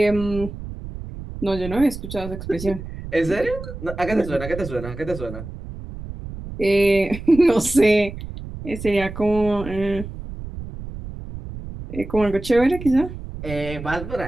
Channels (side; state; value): right; noise; rumble, 10 dB below the sound